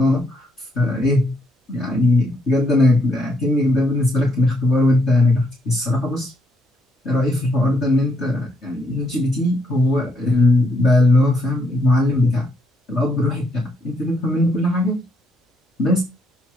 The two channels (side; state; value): both; normal; correlation 0.74